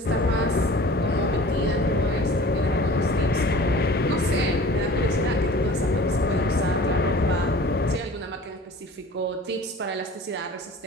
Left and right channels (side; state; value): both; normal; correlation 0.44